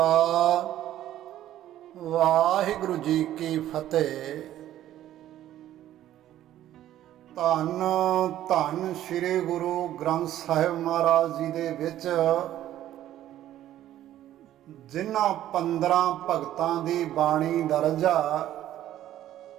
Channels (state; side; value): quieter; left; 12.7 dB